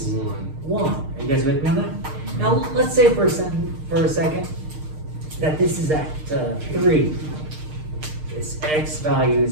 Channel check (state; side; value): late; left; 6.5 ms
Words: 1. Are you guys with me on that? Now, let's say for a second that this is at 3. This x value